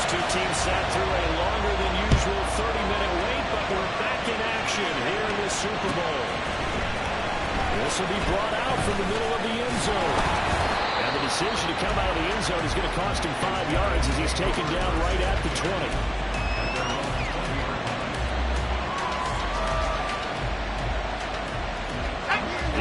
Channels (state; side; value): identical; both; correlation 1.00